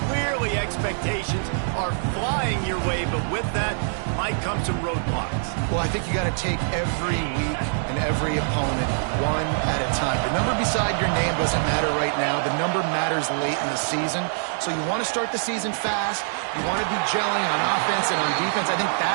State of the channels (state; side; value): silent; left; digital silence